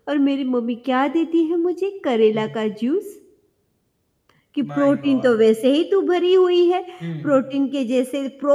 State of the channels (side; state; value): both; identical; correlation 1.00